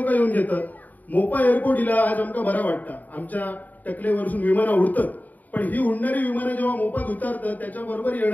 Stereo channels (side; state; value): right; late; 0.080 ms